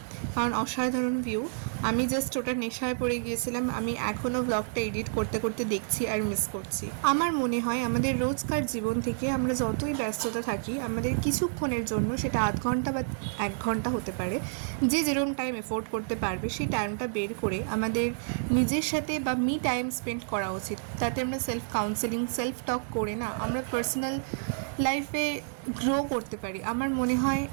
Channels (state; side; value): silent; left; digital silence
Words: কারণ অসাধারণ ভিউ। আমি জাস্ট ওটা নেশায় পড়ে গিয়েছিলাম। আমি এখনও ব্লগটা এডিট করতে করতে দেখছি আর মিস করছি। আমার মনে হয় আমাদের রোজকার জীবন থেকে আমরা যতই ব্যস্ততা থাকি, আমাদের কিছুক্ষণের জন্য, সেটা আধ ঘন্টা বা 1 ঘন্টা হতে পারে, যে যেরকম টাইম এফোর্ড করতে পারবে সেই টাইমটা বের করে আমাদের নিজের সাথে বা মি টাইম স্পেন্ড করা উচিত। তাতে আমরা সেলফ কাউন্সেলিং, সেলফ টক করে না আমরা পার্সোনাল লাইফে গ্রো করতে পারি। আমার মনে হয়